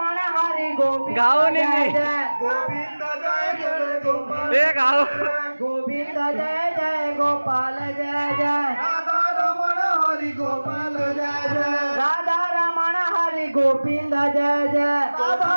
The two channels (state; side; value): inverted; both; correlation -1.00